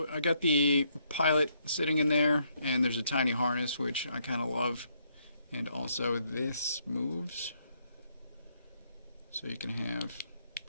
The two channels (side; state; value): both; inverted; correlation -0.73